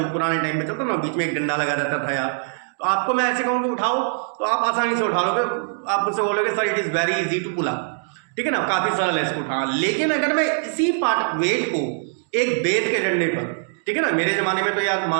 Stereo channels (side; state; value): left; silent; digital silence